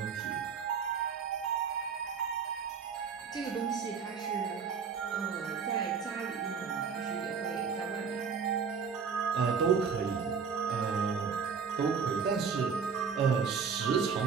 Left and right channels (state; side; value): quieter; left; 6.1 dB